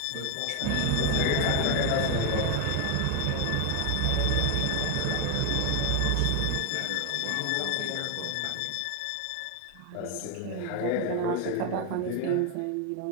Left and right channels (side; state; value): both; different; correlation 0.01